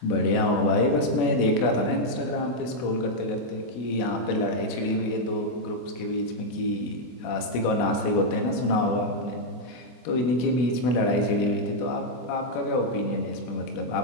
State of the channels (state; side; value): late; right; 24 ms